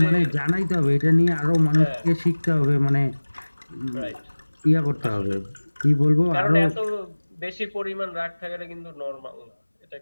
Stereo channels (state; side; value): inverted; both; correlation -1.00